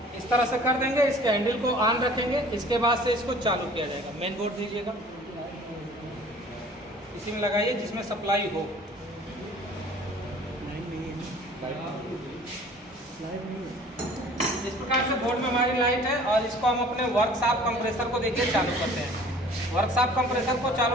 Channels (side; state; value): both; normal; correlation 0.50